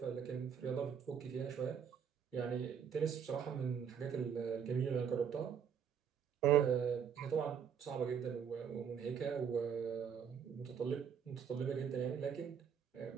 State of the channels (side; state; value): left; quieter; 7.6 dB